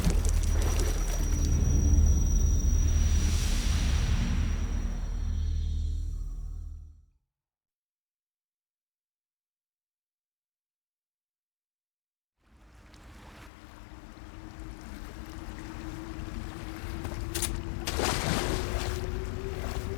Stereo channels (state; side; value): drops out; right; at 13.5 s